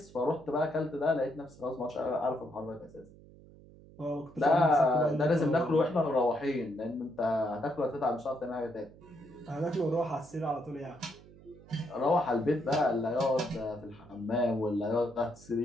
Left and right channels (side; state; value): right; noise; hum, 22 dB below the sound